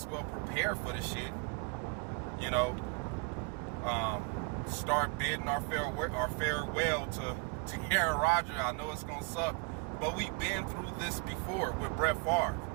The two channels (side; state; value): left; quieter; 30.0 dB